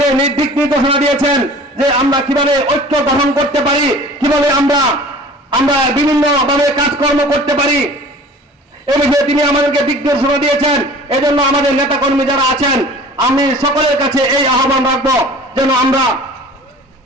দিক নির্দেশনা দিয়েছেন, যে আমরা কিভাবে ঐক্য গঠন করতে পারি, কিভাবে আমরা বিভিন্নভাবে কাজকর্ম করতে পারি, এই বিষয়ে তিনি আমাদেরকে দিক নির্দেশনা দিয়েছেন। এজন্য আমাদের নেতা কর্মী যারা আছেন, আমি সকলের কাছে এই আহ্বান রাখবো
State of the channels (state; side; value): normal; both; correlation 0.45